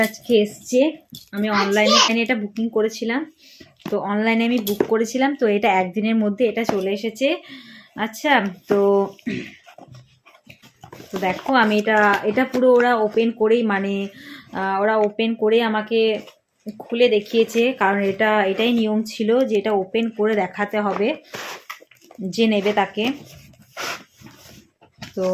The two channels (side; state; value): both; identical; correlation 1.00